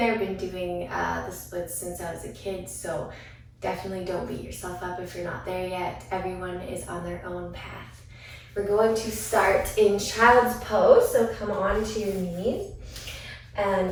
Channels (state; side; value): identical; both; correlation 1.00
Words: I've been doing the splits since I was a kid, so definitely don't beat yourself up if you're not there yet. Everyone is on their own path. We're going to start in child's pose, so come on to your knees and